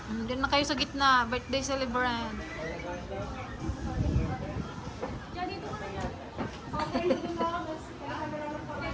Doon na kayo sa gitna, birthday celebrant.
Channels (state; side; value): identical; both; correlation 1.00